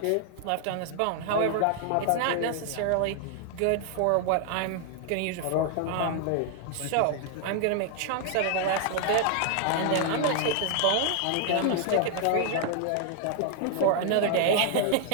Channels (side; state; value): both; different; correlation 0.00